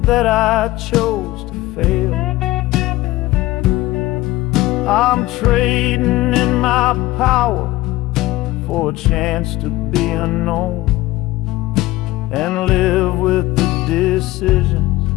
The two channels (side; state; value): right; quieter; 17.9 dB